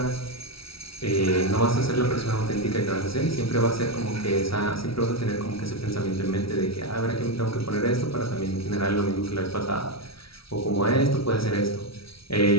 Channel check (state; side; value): late; right; 0.75 ms